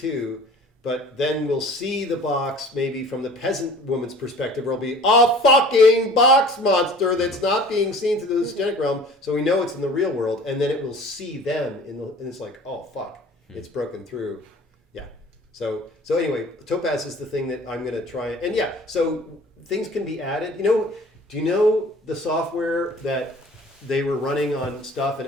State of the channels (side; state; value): both; normal; correlation 0.47